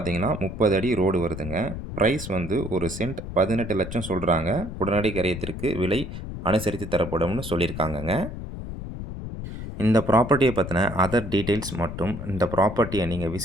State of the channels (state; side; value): noise; left; rumble, 8 dB below the sound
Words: 30 அடி ரோடு வருதுங்க. ப்ரைஸ் வந்து ஒரு சென்ட் 18 லட்சம் சொல்கிறாங்க. உடனடி கரையத்திற்கு விலை அனுசரித்து தரப்படும்னு சொல்லியிருக்காங்கங்க. இந்த ப்ராப்பர்ட்டியை பற்றின அதர் டீட்டெயில்ஸ் மற்றும் இந்த ப்ராப்பர்ட்டியை நீங்கள்